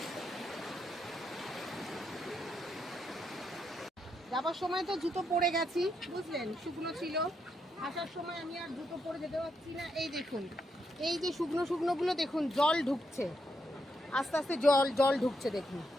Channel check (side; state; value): both; normal; correlation 0.80